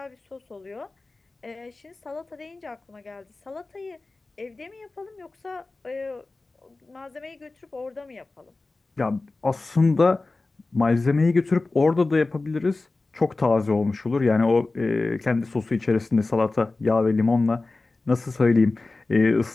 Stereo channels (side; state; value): right; quieter; 3.4 dB